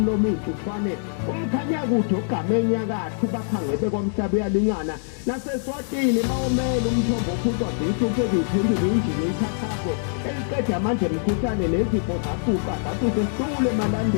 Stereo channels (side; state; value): right; silent; digital silence